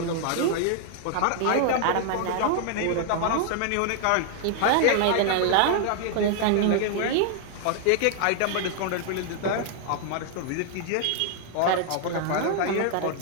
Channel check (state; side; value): different; both; correlation 0.00